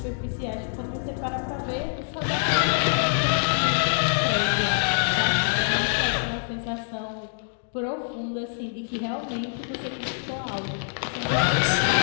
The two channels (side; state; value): right; silent; digital silence